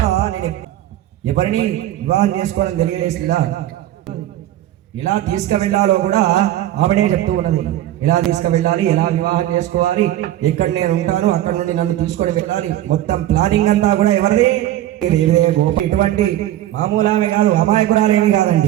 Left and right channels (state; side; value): quieter; left; 13.5 dB